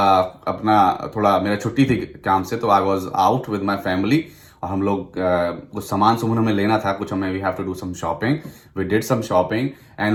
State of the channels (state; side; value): identical; both; correlation 1.00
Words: थोड़ा मेरा छुट्टी थी काम से, तो I was out with my family. और हम लोग कुछ सामान हमें लेना था, कुछ हमें we have to do some shopping, we did some shopping and